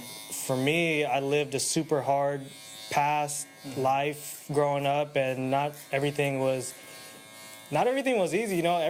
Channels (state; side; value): identical; both; correlation 1.00